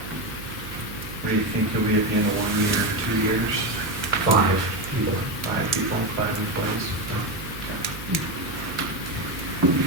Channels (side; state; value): right; noise; hum, 13 dB below the sound